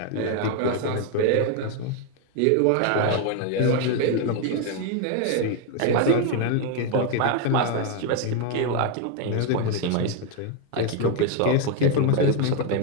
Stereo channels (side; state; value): both; different; correlation 0.01